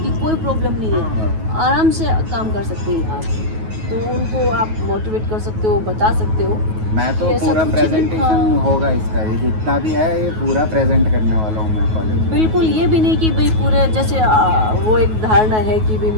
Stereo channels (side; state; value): left; late; 9.3 ms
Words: की कोई प्रॉब्लम नहीं है, हाँ। आराम से काम कर सकते हैं आप। तो उनको आप मोटिवेट कर सकते हो, बता सकते हो। मैं तो ये ऐसा पूरा कुछ नहीं, प्रेजेंटेशन हाँ। होगा इसका, ये जितना भी है ये पूरा प्रेजेंट करने वाला हूँ मैं कॉलेज में। बिल्कुल, ये भी नहीं कि भाई पूरे जैसे वो एक धारणा है कि भाई